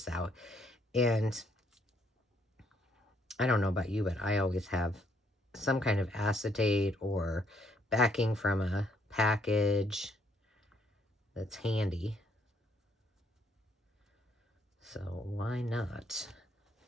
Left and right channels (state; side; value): normal; both; correlation 0.69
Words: out. And I don't know about you, but I always have some kind of acetate or backing from a package that's handy. So why not?